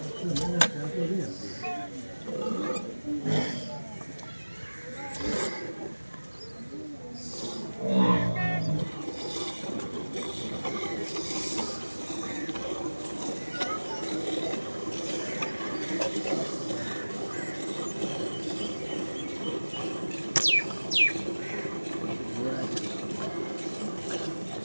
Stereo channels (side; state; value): both; inverted; correlation -1.00